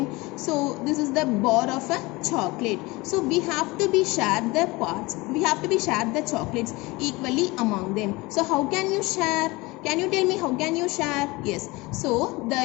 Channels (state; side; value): quieter; right; 22.9 dB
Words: So this is the bar of a chocolate. So we have to be share the parts. We have to be share the chocolates equally among them. So how can you share? Can you tell me how can you share? Yes. So